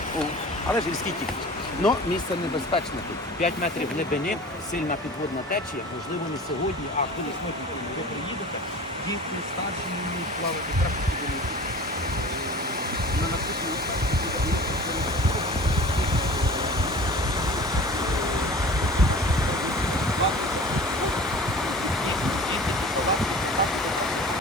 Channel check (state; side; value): normal; both; correlation 0.39